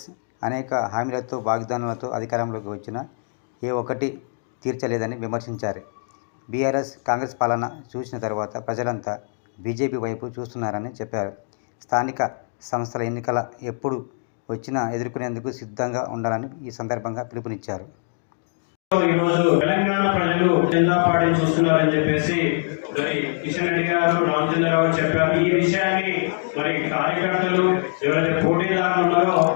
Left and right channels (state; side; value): silent; right; digital silence